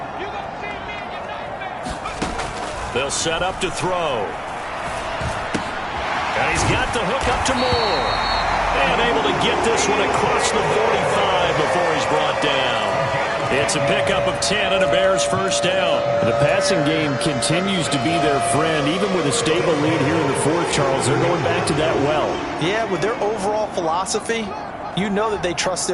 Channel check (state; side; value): identical; both; correlation 1.00